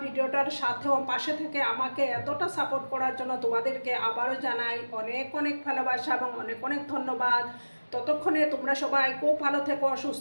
ভিডিওটার সাথে পাশে থেকে আমাকে এতটা সাপোর্ট করার জন্য তোমাদেরকে আবারও জানাই অনেক অনেক ভালোবাসা এবং অনেক অনেক ধন্যবাদ। ততক্ষণে তোমরা সবাই খুব ভালো থেকো,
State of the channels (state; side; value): inverted; both; correlation -1.00